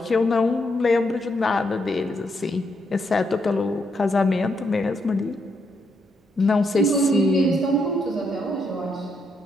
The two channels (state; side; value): normal; both; correlation 0.78